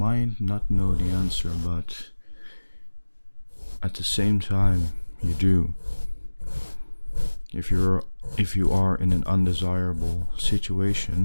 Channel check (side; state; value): both; inverted; correlation -1.00